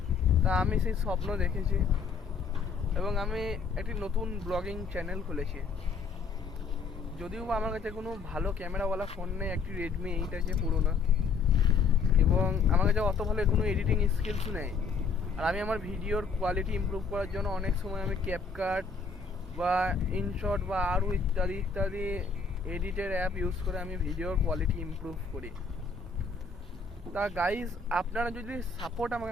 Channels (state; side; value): quieter; right; 5.1 dB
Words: তা আমি সেই স্বপ্ন দেখেছি এবং আমি একটি নতুন ব্লগিং চ্যানেল খুলেছি। যদিও বা আমার কাছে কোনো ভালো ক্যামেরাওয়ালা ফোন নেই, একটি রেডমি 8 আছে পুরোনো, এবং আমার কাছে অত ভালো কোনো এডিটিং স্কিলস নেই। আর আমি আমার ভিডিওর কোয়ালিটি ইমপ্রুভ করার জন্য অনেক সময় আমি ক্যাপকাট বা ইনশট বা আরও ইত্যাদি ইত্যাদি এডিটের অ্যাপ ইউজ করে আমি ভিডিওর কোয়ালিটি ইমপ্রুভ করি। তা গাইজ, আপনারা যদি সাপোর্ট